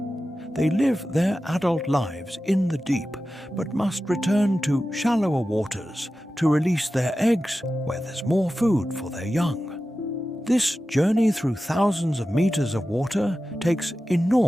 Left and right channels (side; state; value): both; normal; correlation 0.93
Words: They live their adult lives in the deep, but must return to shallower waters to release their eggs where there's more food for their young. This journey through thousands of meters of water takes